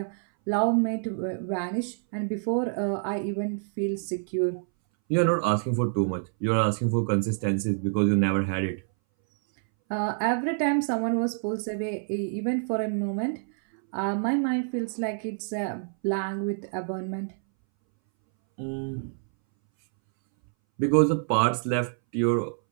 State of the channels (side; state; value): left; silent; 60 dB below the other